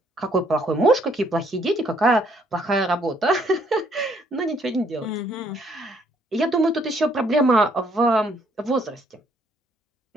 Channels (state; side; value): normal; both; correlation 0.67